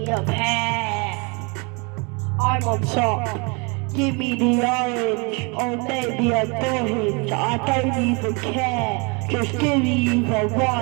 a pair. I'm on top, give me the orange, or maybe a orange. I don't even care, just give me either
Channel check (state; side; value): quieter; left; 31.1 dB